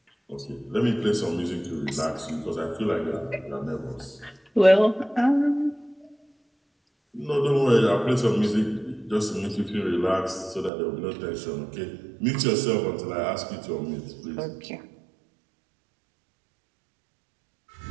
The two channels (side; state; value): left; drops out; at 10.7 s